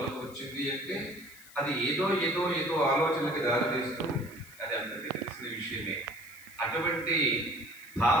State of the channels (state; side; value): noise; left; hiss, 20 dB below the sound